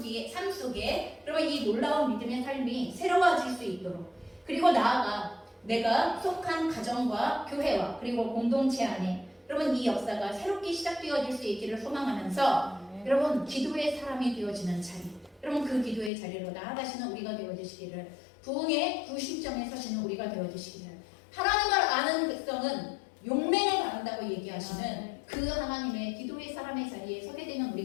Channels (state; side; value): drops out; right; at 16.1 s